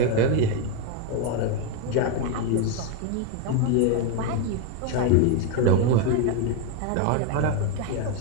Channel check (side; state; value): both; different; correlation 0.02